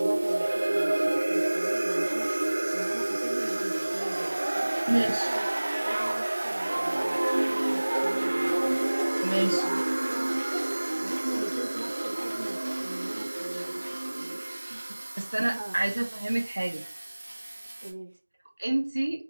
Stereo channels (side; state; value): both; inverted; correlation -1.00